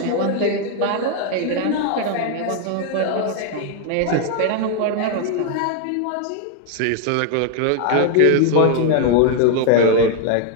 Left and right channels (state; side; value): different; both; correlation 0.00